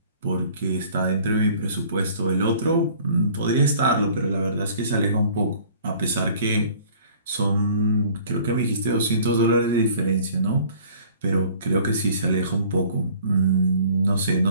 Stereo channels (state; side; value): inverted; both; correlation -0.52